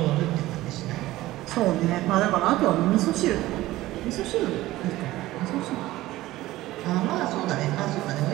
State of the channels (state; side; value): quieter; left; 16.8 dB